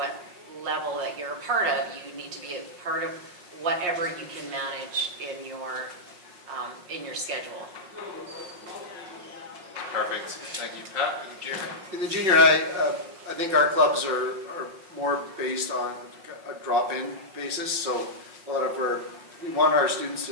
level that you're a part of. You need to be a part of whatever you can manage in your schedule. Perfect. Thank you, Pat. In the junior high, I think our clubs are more based on a drop-in basis. So we want our students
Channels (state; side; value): late; left; 5.5 ms